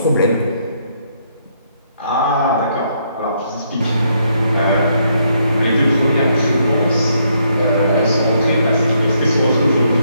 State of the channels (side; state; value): both; inverted; correlation -0.73